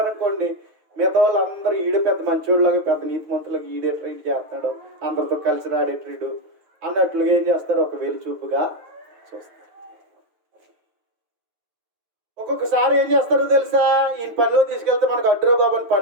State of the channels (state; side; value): late; left; 9.2 ms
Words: అనుకోండి, మిగతా వాళ్ళు అందరూ ఈడే పెద్ద మంచోళ్ళలాగా, పెద్ద నీతిమంతులాగా ఈడే ట్రీట్ చేస్తున్నాడు, అందరితో కలిసి రాడే ట్రీడు అన్నట్లుగా ఏం చేస్తారు? ఒక వెలి చూపుగా చూస్తారు. ఒక్కొక్కసారి ఏం చేస్తారో తెలుసా, ఈయన పనిలో తీసుకెళ్తే మనకు అడ్డురా బాబు అని